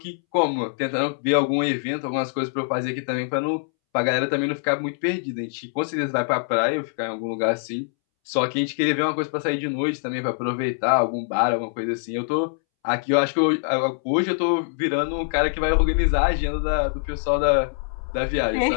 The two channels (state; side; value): silent; right; 63 dB below the other